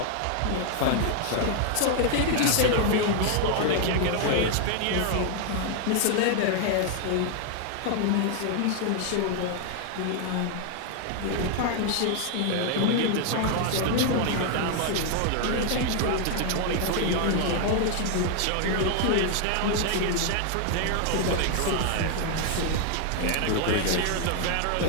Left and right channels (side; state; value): both; different; correlation 0.00